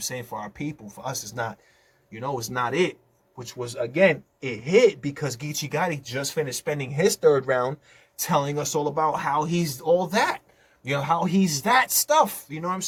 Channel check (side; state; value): both; identical; correlation 1.00